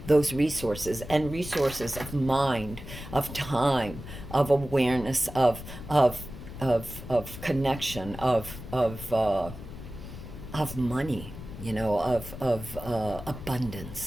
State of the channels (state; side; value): noise; left; rumble, 12 dB below the sound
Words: those resources, and resources of mind, of time, of awareness, of connection, of money, you know, of